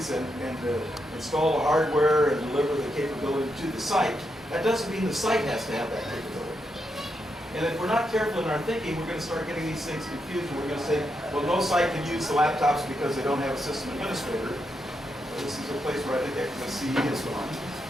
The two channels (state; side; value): normal; both; correlation 0.83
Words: and install the hardware and deliver the capability to the site. That doesn't mean the site has to have that capability. And if we're not careful in our thinking, we're going to start getting these things confused. We're going to say, well, no site can use the laptops because they don't have a system administrator. Well, this is a place where I think XMSCE is